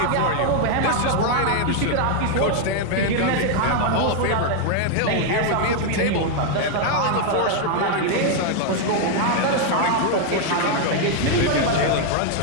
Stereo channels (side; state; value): both; different; correlation 0.00